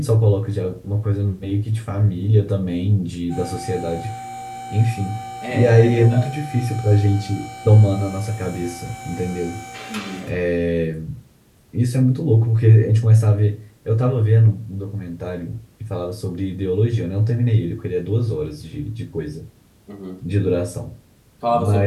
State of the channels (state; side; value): identical; both; correlation 1.00